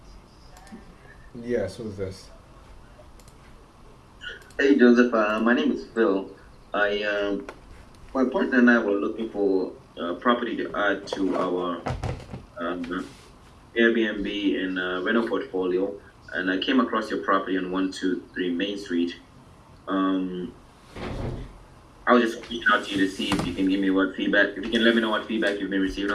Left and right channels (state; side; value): identical; both; correlation 1.00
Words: Yes, who's this? Hey, Joseph. My name is Phil. My partner and I were looking for property to add to our Airbnb and rental portfolio, and I came across your property on 123 Main Street. I was just reaching out to you to see if you can give me what feedback, if you can let me know what feedback you've been receiving